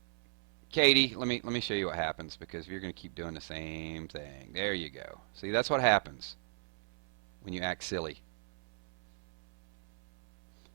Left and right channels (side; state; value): left; silent; 54 dB below the other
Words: Katie, let me show you what happens, because if you're going to keep doing the same thing, there you go. See, that's what happens when you act silly.